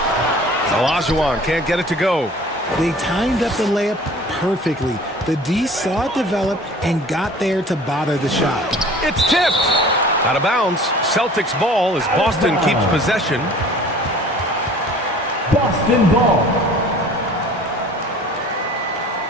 Olajuwon can't get it to go. They timed up the layup perfectly. The D saw it develop and got there to bother the shot. It's tipped. Out of bounds. Celtics ball as Boston keeps possession. Boston ball.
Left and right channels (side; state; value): both; normal; correlation 0.47